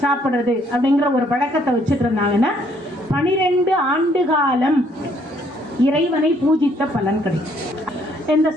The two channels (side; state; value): both; normal; correlation 0.66